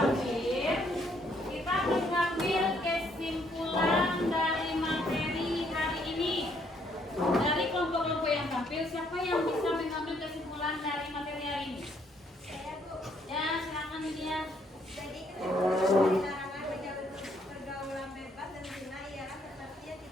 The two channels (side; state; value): both; normal; correlation 0.69